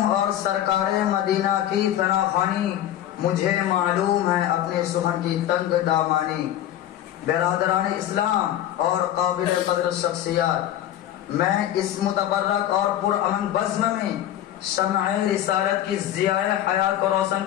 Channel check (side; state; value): right; quieter; 12.1 dB